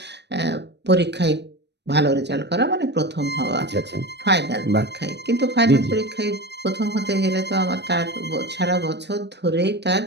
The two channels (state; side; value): late; left; 0.50 ms